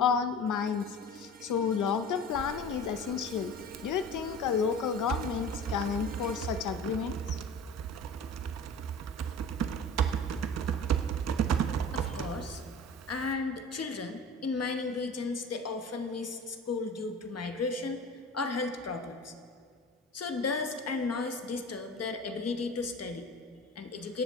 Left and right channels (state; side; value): normal; both; correlation 0.37